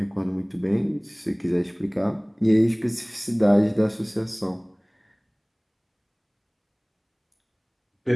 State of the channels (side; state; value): both; identical; correlation 1.00